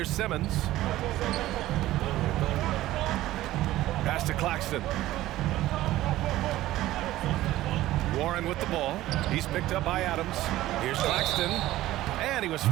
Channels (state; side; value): quieter; left; 15.5 dB